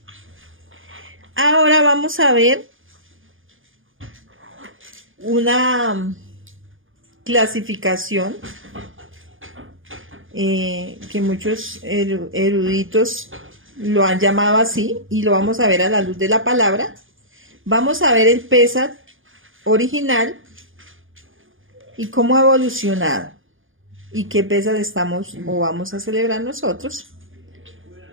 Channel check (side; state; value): left; late; 0.58 ms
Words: Ahora vamos a ver una clasificación que muchos eruditos lo han llamado así, y lo vamos a ver a la luz de la palabra. Vamos a ver el Pesach original y cómo ha evolucionado y qué Pesach estamos o vamos a celebrar nosotros.